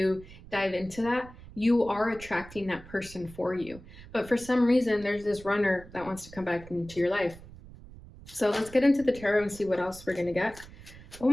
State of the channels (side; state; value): right; noise; rumble, 18 dB below the sound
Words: dive into that, you are attracting that person for you. But for some reason, there's this runner that wants to come back into your life. So let's get into the tarot and see what else we're going to get. Oh